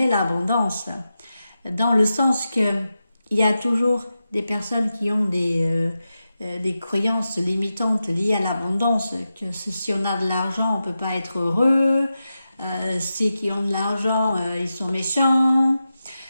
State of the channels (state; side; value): inverted; both; correlation -0.91